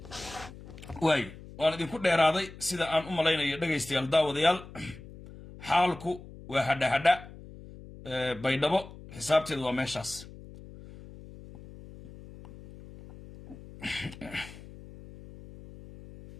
way waan idinku dheeraaday sida aan u malaynayo dhageystayaal daawadayaal xaalku waa hadha baydhabo xisaabteedu waa meeshaas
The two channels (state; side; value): noise; left; hum, 17 dB below the sound